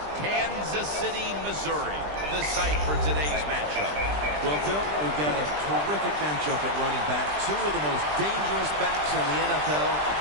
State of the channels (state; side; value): late; left; 20 ms